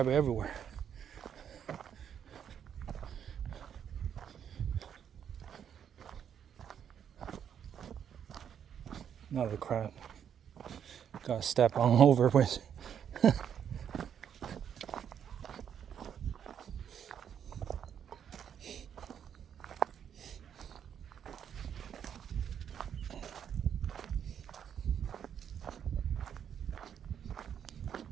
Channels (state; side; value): quieter; left; 8.6 dB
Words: everywhere. Another crab. Gotta step on over with.